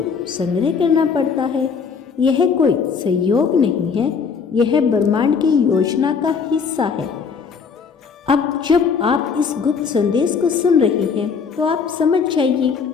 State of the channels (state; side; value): quieter; right; 5.9 dB